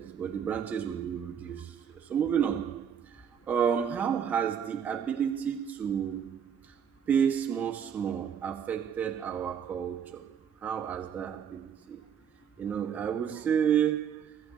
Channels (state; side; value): quieter; left; 8.1 dB